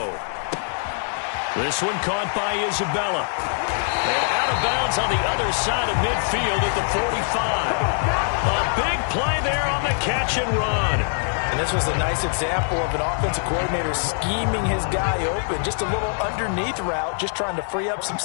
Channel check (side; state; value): right; silent; 61 dB below the other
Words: This one caught by Isabella. And out of bounds on the other side of midfield at the 45. A big play there on the catch and run. And this was a nice example of an offensive coordinator scheming his guy open. Just a little underneath route, just trying to free up some